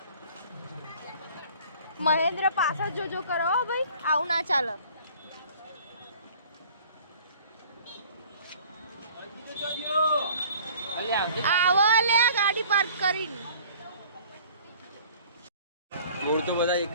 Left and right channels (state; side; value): inverted; both; correlation -0.50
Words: મહેન્દ્ર પાછળ જોજો કરો ભાઈ, આવું ના ચાલે. આવો લે ગાડી પાર્ક કરીને. મોર તો બધા એક